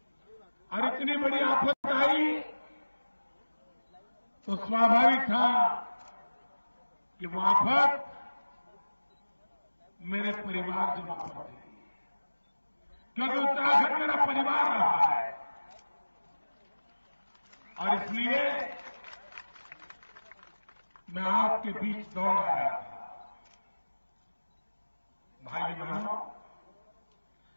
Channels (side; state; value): both; inverted; correlation -1.00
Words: और इतनी बड़ी आफत आई तो स्वाभाविक था कि वो आफत मेरे परिवारजनों पर थी, क्योंकि उत्तराखंड मेरा परिवार रहा है। और इसलिए मैं आपके बीच दौड़ आया था। भाई बहनों,